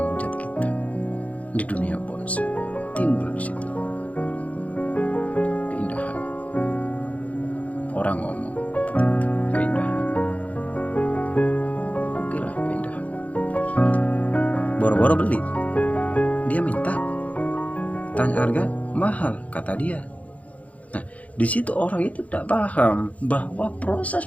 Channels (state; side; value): late; right; 0.068 ms